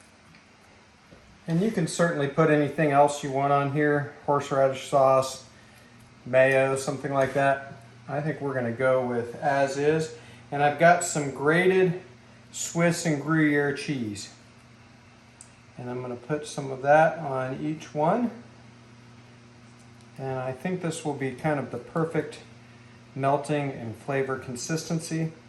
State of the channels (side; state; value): both; identical; correlation 1.00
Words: And you can certainly put anything else you want on here, horseradish sauce, mayo, something like that. I think we're going to go with as is. And I've got some grated Swiss and Gruyere cheese. And I'm going to put some of that on each one. And I think this will be kind of the perfect melting and flavor consistency.